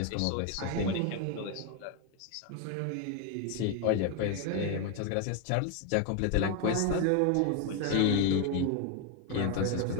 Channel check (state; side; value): different; both; correlation 0.01